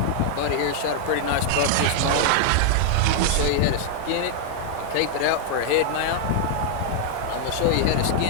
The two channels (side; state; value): both; different; correlation -0.01